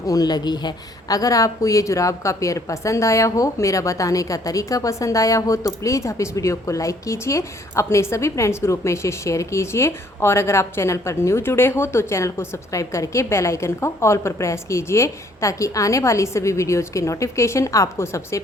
ऊन लगी है। अगर आपको ये जुराब का पेयर पसंद आया हो, मेरा बताने का तरीका पसंद आया हो, तो प्लीज़ आप इस वीडियो को लाइक कीजिए, अपने सभी फ्रेंड्स ग्रुप में इसे शेयर कीजिए और अगर आप चैनल पर न्यू जुड़े हो तो चैनल को सब्सक्राइब करके बेल आइकन को ऑल पर प्रेस कीजिए, ताकि आने वाली सभी वीडियोज़ के नोटिफिकेशन आपको सबसे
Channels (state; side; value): normal; both; correlation 0.62